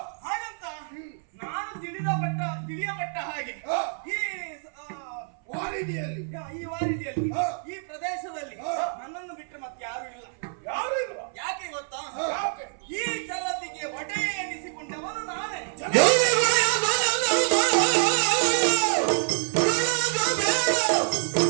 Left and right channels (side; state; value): left; silent; 60 dB below the other